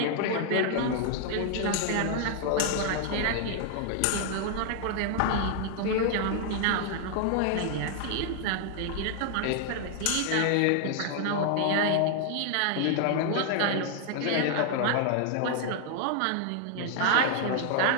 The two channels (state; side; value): different; both; correlation 0.00